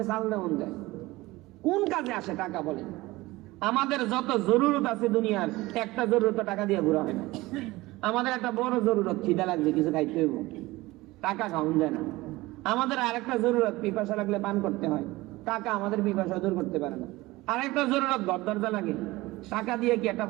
চাল দেওয়ান যায়। কোন কাজে আসে টাকা বলে? আমাদের যত জরুরত আছে দুনিয়ার, একটা জরুরত টাকা দিয়ে ঘুরা হয় না। আমাদের একটা বড় জরুরত, খিদা লাগছে কিছু খাইতে হইব, টাকা খাওয়ান যায় না। আমাদের আরেকটা জরুরত, পিপাসা লাগলে পান করতে হয়, টাকা আমাদের পিপাসা দূর করতে পারে না। আরেকটা জরুরত, ঘর দরজা লাগে, টাকা দিয়ে কি একটা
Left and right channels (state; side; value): quieter; left; 19.8 dB